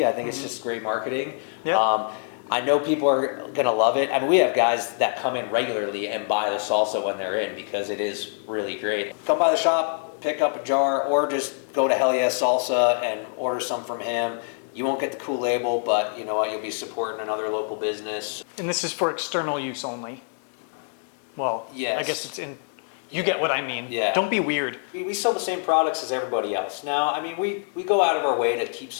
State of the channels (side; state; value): right; silent; 61 dB below the other